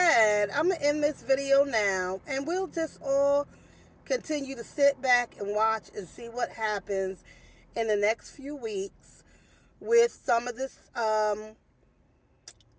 I'm going to end this video now, and we'll just all continue to sit back and watch and see what happens in the next few weeks with some of this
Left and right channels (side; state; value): both; identical; correlation 1.00